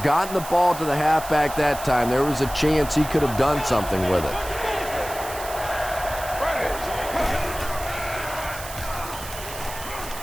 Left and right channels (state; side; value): noise; right; hiss, 12 dB below the sound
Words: gotten the ball to the halfback that time, there was a chance he could have done something with it.